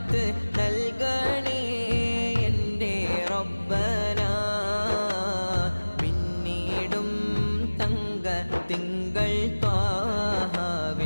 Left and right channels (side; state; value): both; inverted; correlation -1.00